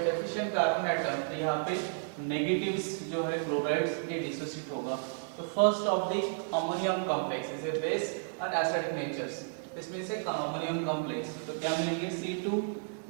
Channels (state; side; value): silent; left; digital silence